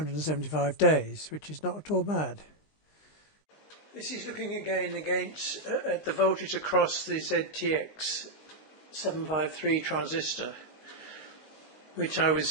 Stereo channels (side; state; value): right; late; 19 ms